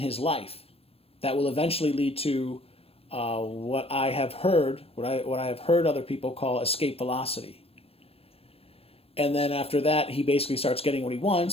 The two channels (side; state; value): right; late; 0.28 ms